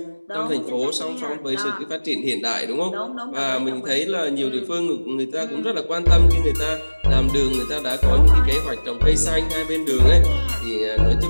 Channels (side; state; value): both; inverted; correlation -1.00